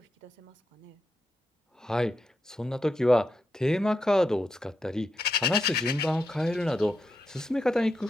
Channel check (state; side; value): normal; both; correlation 0.86